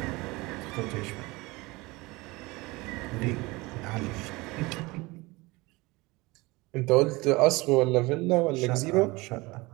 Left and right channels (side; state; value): left; quieter; 22.9 dB